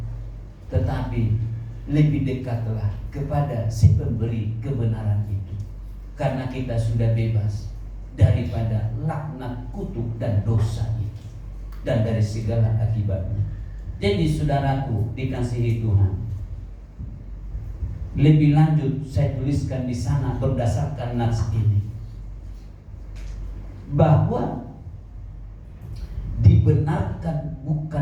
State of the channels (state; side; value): identical; both; correlation 1.00